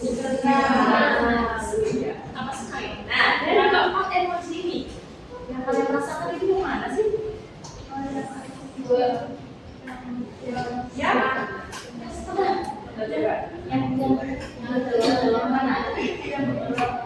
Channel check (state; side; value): identical; both; correlation 1.00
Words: Apa sekali? Nah, dari keempat emoji ini, yang kalian rasakan itu yang mana sih?